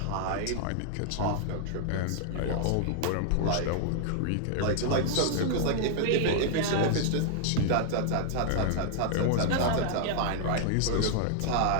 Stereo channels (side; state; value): both; different; correlation -0.01